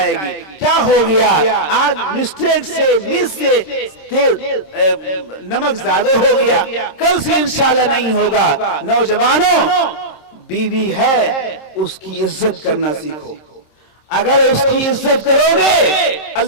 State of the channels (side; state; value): right; late; 26 ms